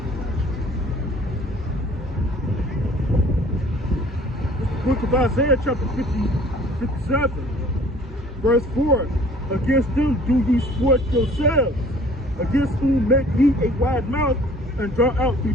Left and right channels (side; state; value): both; normal; correlation 0.52